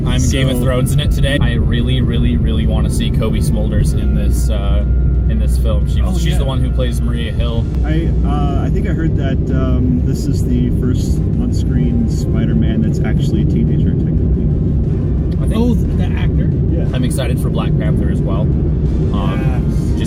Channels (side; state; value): both; identical; correlation 1.00